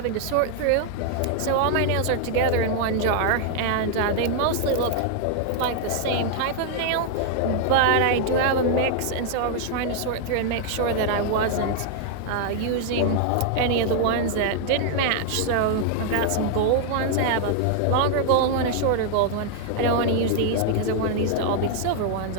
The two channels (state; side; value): different; both; correlation 0.00